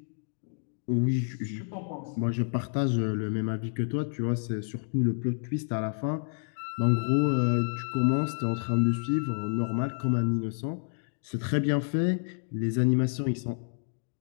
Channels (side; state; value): right; silent; digital silence